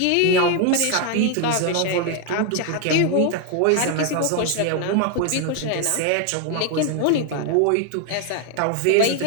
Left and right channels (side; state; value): both; different; correlation 0.01